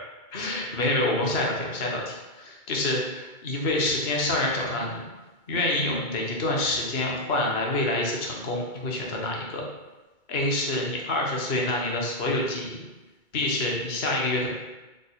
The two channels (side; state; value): right; late; 2.2 ms